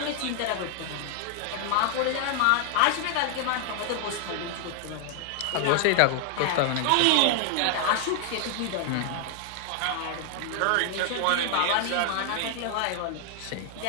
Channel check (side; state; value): both; different; correlation 0.00